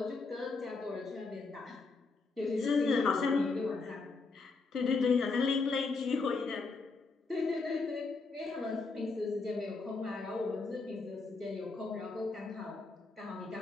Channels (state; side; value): quieter; right; 4.0 dB